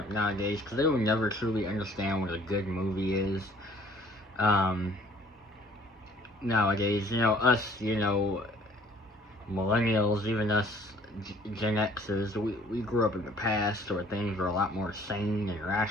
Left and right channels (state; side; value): normal; both; correlation 0.56